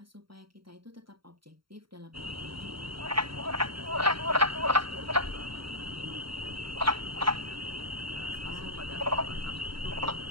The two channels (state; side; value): late; left; 0.74 ms